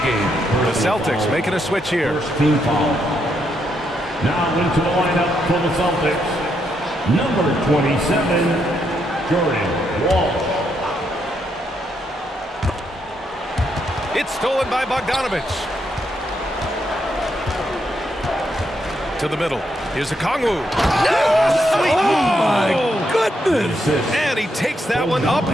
game. The Celtics making a switch here. Team foul. Now into the lineup for the Celtics. Number 27, Jordan Walsh. It's stolen by Bogdanovich. To the middle. Here's Okongwu. Oh, my goodness. And he takes that one up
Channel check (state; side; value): normal; both; correlation 0.78